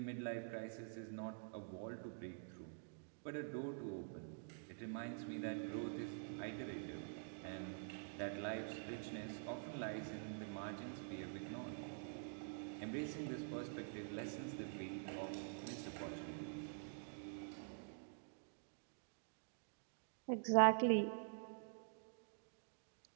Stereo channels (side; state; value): left; silent; digital silence